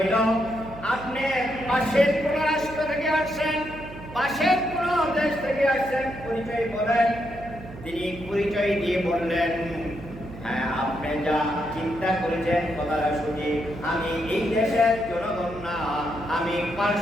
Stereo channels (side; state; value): right; noise; hum, 15 dB below the sound